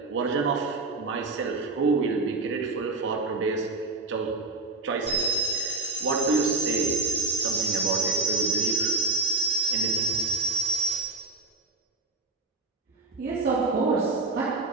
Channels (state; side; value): quieter; left; 3.3 dB